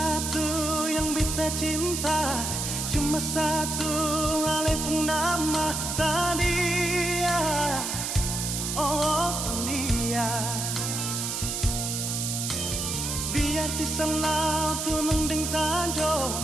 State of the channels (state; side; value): noise; right; hiss, 2 dB below the sound